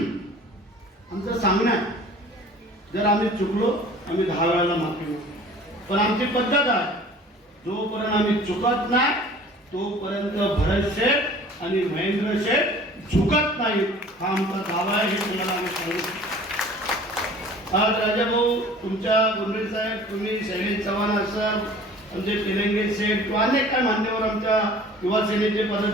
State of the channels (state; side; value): normal; both; correlation 0.47